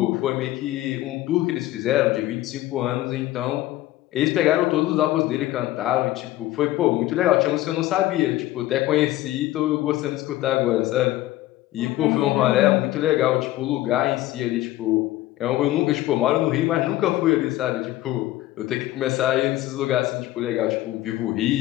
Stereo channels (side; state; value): right; quieter; 15.8 dB